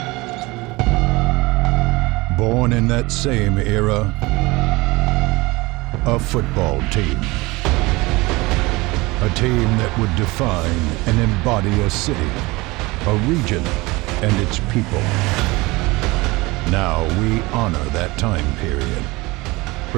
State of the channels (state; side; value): quieter; left; 22.6 dB